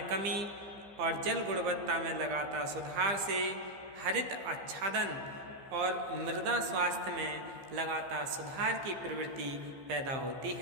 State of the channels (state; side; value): late; left; 15 ms